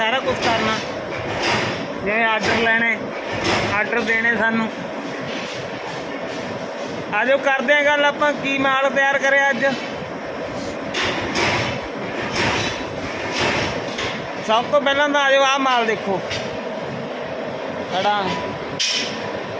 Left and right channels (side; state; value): both; identical; correlation 1.00